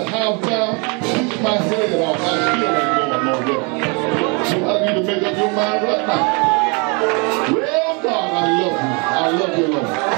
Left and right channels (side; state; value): left; quieter; 32.6 dB